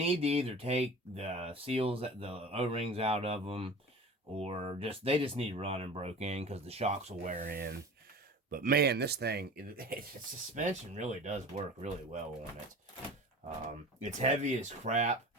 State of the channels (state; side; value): normal; both; correlation 0.37